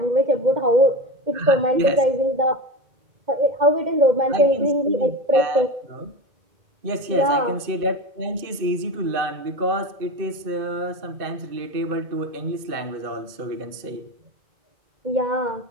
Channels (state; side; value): late; left; 2.5 ms